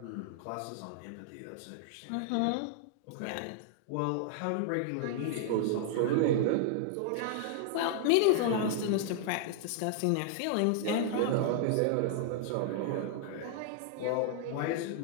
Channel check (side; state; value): both; different; correlation -0.01